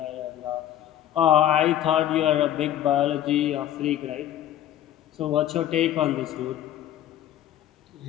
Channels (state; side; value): quieter; right; 11.8 dB